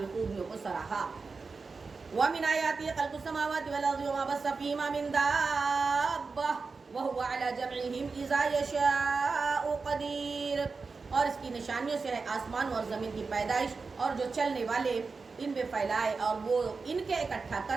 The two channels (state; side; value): quieter; left; 4.5 dB